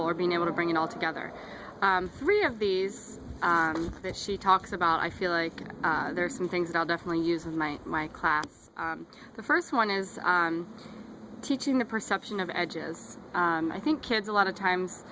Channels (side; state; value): both; identical; correlation 1.00